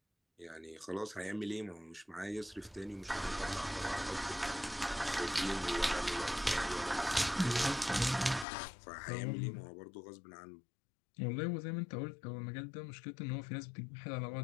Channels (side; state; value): right; drops out; at 8.5 s